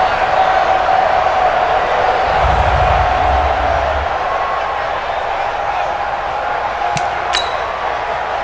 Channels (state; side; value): identical; both; correlation 1.00